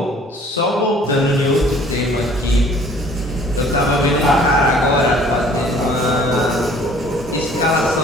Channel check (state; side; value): normal; both; correlation 0.54